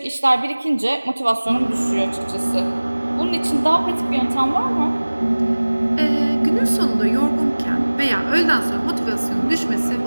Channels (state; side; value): inverted; both; correlation -1.00